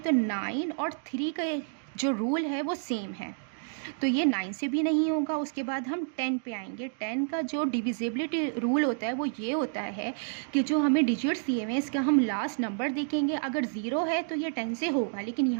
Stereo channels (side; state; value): left; silent; digital silence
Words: 9 और 3 का जो रूल है वो सेम है, तो ये 9 से भी नहीं होगा। उसके बाद हम 10 पे आएंगे। 10 का जो डिविजिबिलिटी रूल होता है वो ये होता है कि जो हमें डिजिट्स दिए हुए हैं इसका हम लास्ट नंबर देखेंगे। अगर 0 है तो ये 10 से होगा, लेकिन